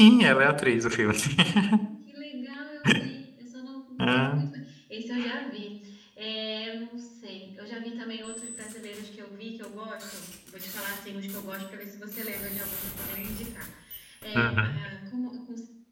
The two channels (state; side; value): identical; both; correlation 1.00